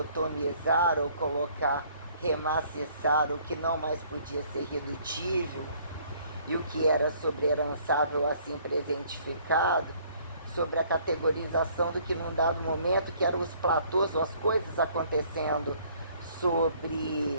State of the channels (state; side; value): inverted; both; correlation -0.60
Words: ou colocar, remaciçar o que não mais podia ser redutível, e o que era sobreherançável assim presentificado, sobre a categorização do que num dado momento, que eram os platôs ou as coisas acontecendo